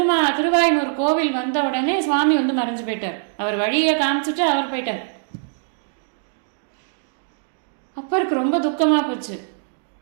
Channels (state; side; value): silent; left; digital silence